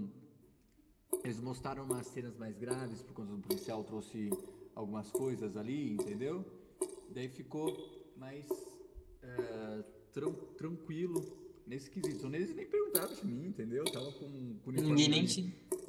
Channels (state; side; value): identical; both; correlation 1.00